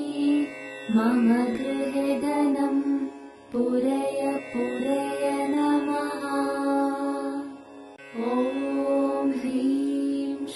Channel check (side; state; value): both; identical; correlation 1.00